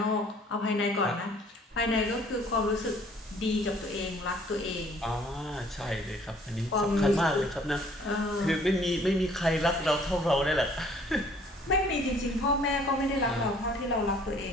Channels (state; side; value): normal; both; correlation 0.57